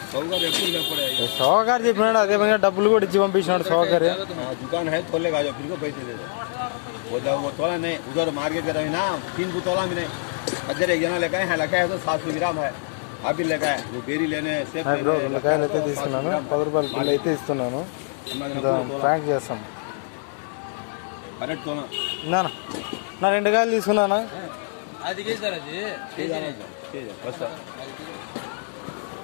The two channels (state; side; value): silent; right; 62 dB below the other